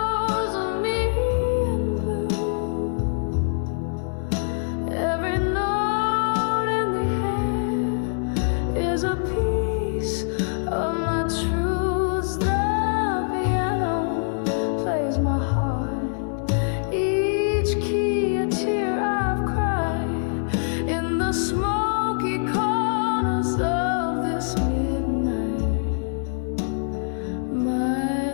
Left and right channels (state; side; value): silent; right; digital silence